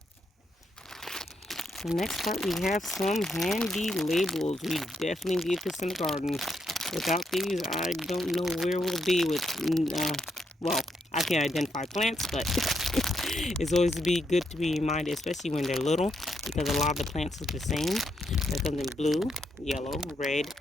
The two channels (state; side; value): normal; both; correlation 0.79